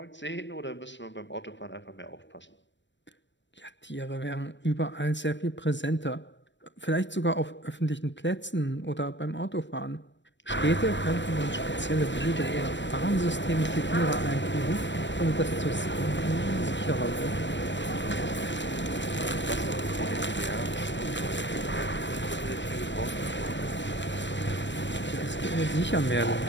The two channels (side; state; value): right; late; 0.53 ms